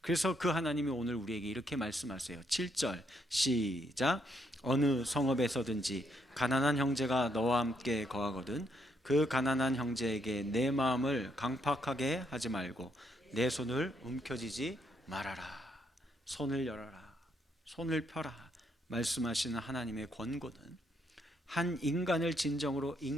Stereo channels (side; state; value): both; normal; correlation 0.74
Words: 그래서 그 하나님이 오늘 우리에게 이렇게 말씀하세요. 7절 시작. 어느 성읍에서든지 가난한 형제가 너와 함께 거하거든 그 가난한 형제에게 내 마음을 강팍하게 하지 말고 내 손을 움켜쥐지 말아라. 손을 열어라, 손을 펴라 말씀하시는 하나님의 권고는 한 인간을 진정으로